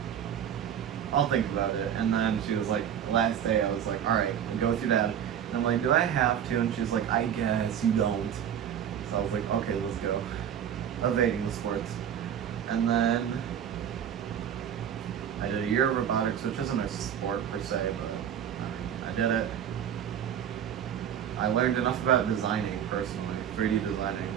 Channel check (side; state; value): left; quieter; 9.2 dB